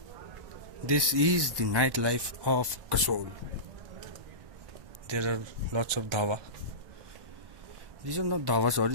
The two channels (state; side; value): late; left; 1.1 ms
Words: This is the nightlife of Kasol. There are lots of dhawa. These are not dhawa,